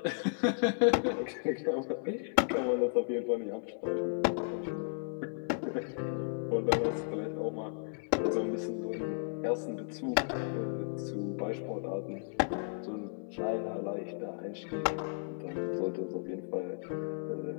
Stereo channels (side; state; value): right; silent; 55 dB below the other